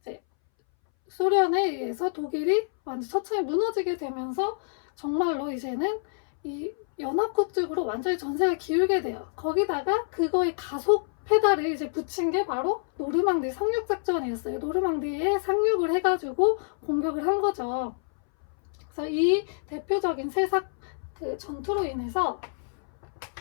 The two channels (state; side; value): silent; right; 60 dB below the other